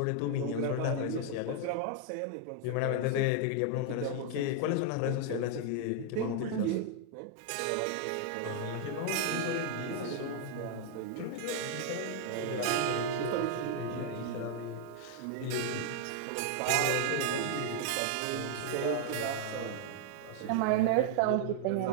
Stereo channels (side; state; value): both; different; correlation 0.00